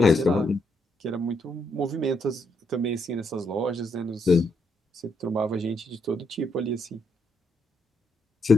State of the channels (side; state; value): both; normal; correlation 0.77